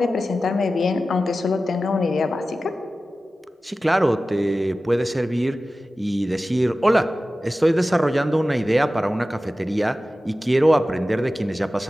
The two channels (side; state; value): both; normal; correlation 0.95